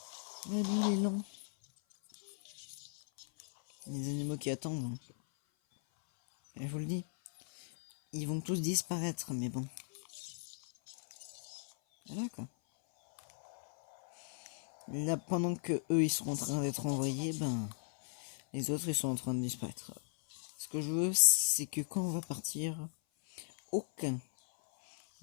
Ouais, lui il est lent. Les animaux qui attendent. Hein. Et je vous le dis. Ils vont tous disparaître, mais bon. Voilà quoi. Là, pendant que eux ils sont en train d'être envoyés, ben les autres ils sont en train de disparaître. Ce que je veux, c'est que quand on va partir, aucun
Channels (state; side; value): silent; right; 53 dB below the other